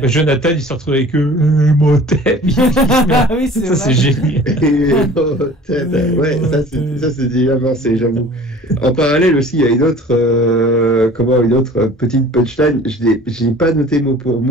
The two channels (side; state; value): both; normal; correlation 0.46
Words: Jonathan, il se retrouve avec eux. Motep. Oui, c'est ça, c'est génial. Ouais, ça, c'est déjà avancé, j'avoue. En parallèle aussi, il y a une autre petite punchline. Je n'ai pas noté mot pour